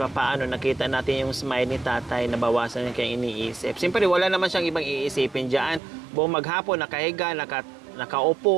nakita natin yung smile ni tatay, nabawasan niya kayong iniisip. Siyempre, wala naman siyang ibang iisipin dyan. Buong maghapon, nakahiga,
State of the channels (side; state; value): left; drops out; at 5.8 s